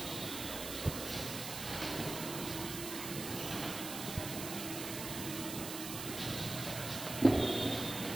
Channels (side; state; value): right; noise; hiss, 6 dB below the sound